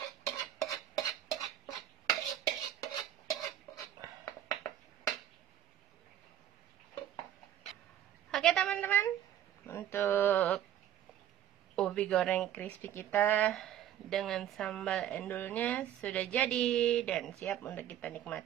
teman-teman. Untuk ubi goreng crispy kita dengan sambal endulnya sudah jadi dan siap untuk kita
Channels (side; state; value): left; quieter; 11.2 dB